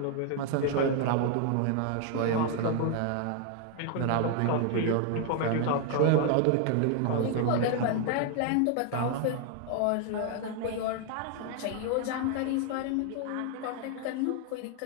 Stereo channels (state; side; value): different; both; correlation 0.00